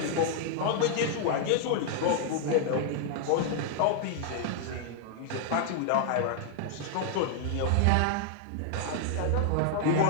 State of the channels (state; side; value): different; both; correlation -0.01